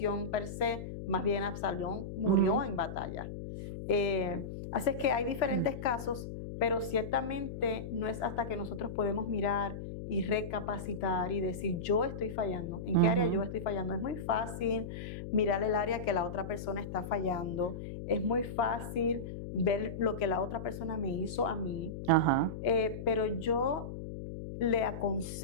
per se, más bien Absalón murió en batalla. Así es que hay diferentes casos, pero ciertamente no es hasta que nosotros podemos mirar y recapacitar y decir, yo estoy fallando. ¿En qué área yo estoy fallando? Es muy fácil mirar el área que la otra persona está fallando. Es muy fácil ver lo que la otra persona me hizo a mí. Pero yo le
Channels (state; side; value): noise; left; hum, 8 dB below the sound